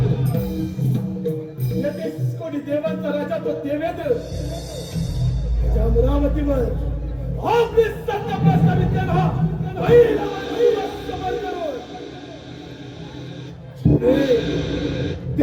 या 30 कोटी देवांचा राजा तो देवेंद्र त्या अमरावतीवर आपली सत्ता प्रस्थापित केला. पहिला समर करून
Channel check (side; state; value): both; identical; correlation 1.00